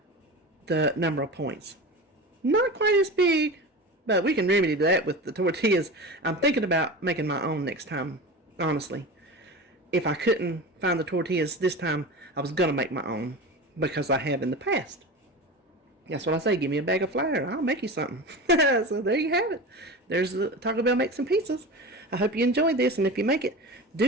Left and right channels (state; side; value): normal; both; correlation 0.29